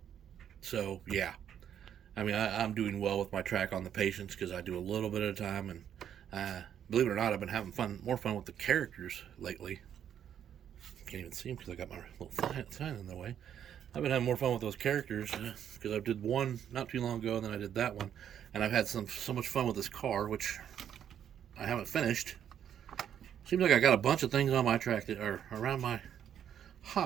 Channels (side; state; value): left; quieter; 9.4 dB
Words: so yeah, I mean, I'm doing well with my track on the patience because I do a little bit at a time, and believe it or not, I've been having more fun with the characters lately. Can't even see them because I got my little sign in the way. I've been having more fun with those characters because I did one not too long ago, and then I did that one, and I've had so much fun with this car, which I haven't finished. Seems like I got a bunch of things on my track that are around my